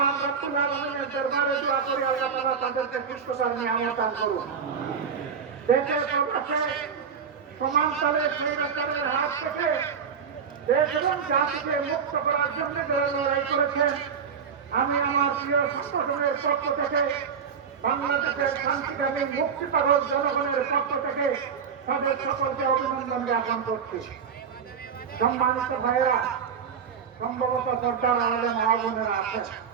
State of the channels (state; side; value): quieter; left; 6.7 dB